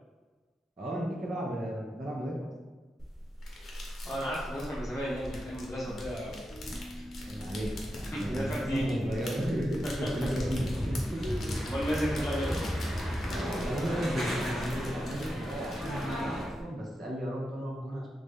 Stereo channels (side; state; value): both; normal; correlation 0.88